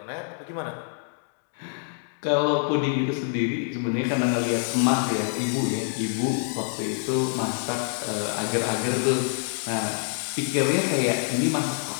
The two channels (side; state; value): right; silent; 61 dB below the other